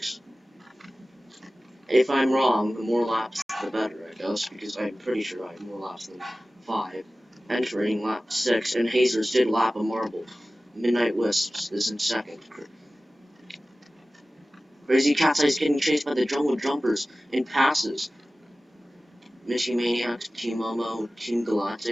If I'm wrong, the more laps, the better, I guess, because I'm pretty sure I have more laps than 5. Entering lap 6, and Hazers did lap a marble. Midnight Wisps is in second. Crazy Cat's Eye is getting chased by the Jungle Jumpers and passes. Mishy Maniacs, Team Momo, Team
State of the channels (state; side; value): normal; both; correlation 0.97